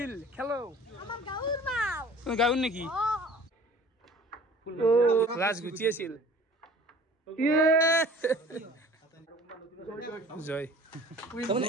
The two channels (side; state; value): both; normal; correlation 0.48